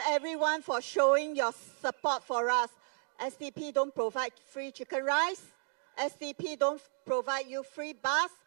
everyone for showing your support for us. SDP don't provide free chicken rice. SDP don't provide you free bus,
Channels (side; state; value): left; silent; 55 dB below the other